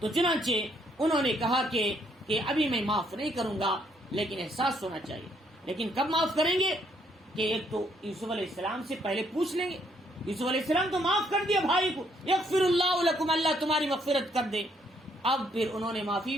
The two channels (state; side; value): normal; both; correlation 0.70